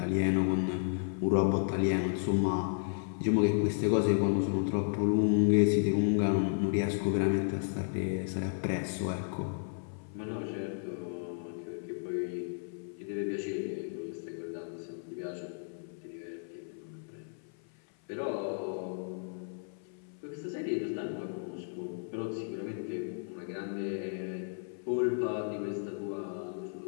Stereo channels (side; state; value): right; silent; 56 dB below the other